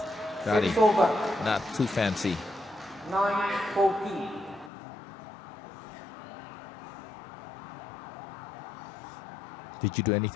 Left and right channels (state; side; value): drops out; right; at 4.7 s